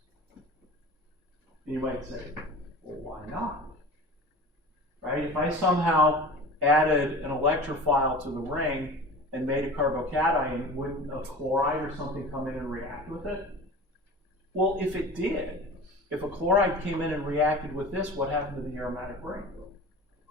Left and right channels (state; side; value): normal; both; correlation 0.37